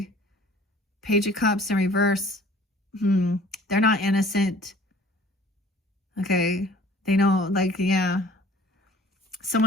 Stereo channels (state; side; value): normal; both; correlation 0.51